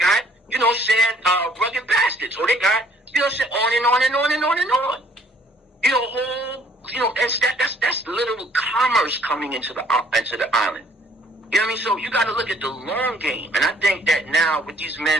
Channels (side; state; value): both; normal; correlation 0.59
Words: you know, saying, Rugged Bastards. Oh, they got, you know, saying on and on and on and on and on. You know, whole, you know, and that's literal commerce coming into the island. You know what I mean? So you got to look at the long game. And I think that now with these